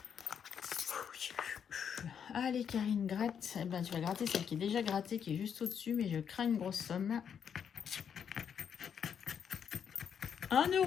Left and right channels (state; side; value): quieter; right; 7.7 dB